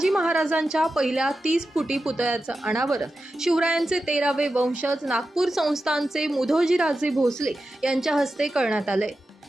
महाराजांच्या पहिल्या 30 फुटी पुतळ्याचं अनावरण शिवरायांचे 13वे वंशज नागपूर संस्थानचे मुधोजीराजे भोसले यांच्या हस्ते करण्यात आले।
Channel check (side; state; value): both; normal; correlation 0.91